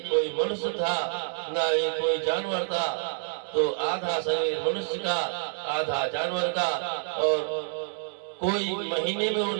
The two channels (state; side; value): silent; left; digital silence